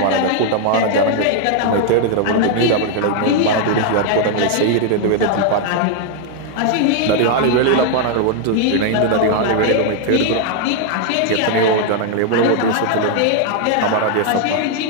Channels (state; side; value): different; both; correlation 0.00